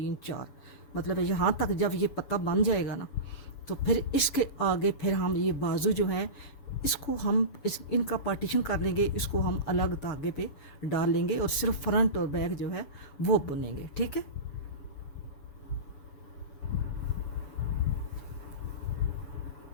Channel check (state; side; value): late; right; 7.0 ms